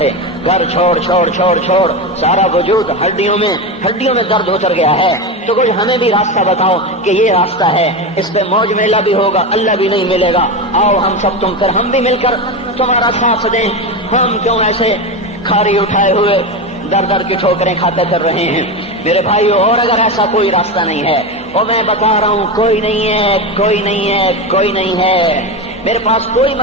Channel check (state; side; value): normal; both; correlation 0.18